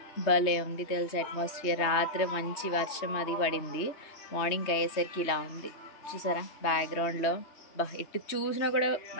భలే ఉంది తెలుసా అట్మాస్ఫియర్. రాత్రి మంచి వర్షం అది పడింది, మార్నింగ్ అయ్యేసరికి ఇలా ఉంది చూసారా బ్యాక్గ్రౌండ్లో. ఎటు చూసినా కూడా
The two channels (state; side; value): late; right; 3.2 ms